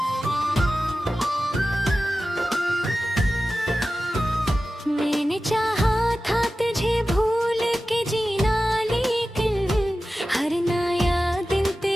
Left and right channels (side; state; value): both; normal; correlation 0.94